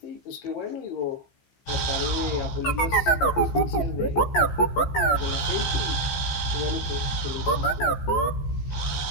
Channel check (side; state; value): right; late; 15 ms